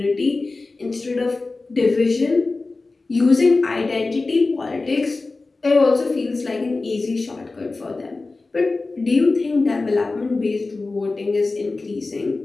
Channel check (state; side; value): quieter; right; 3.5 dB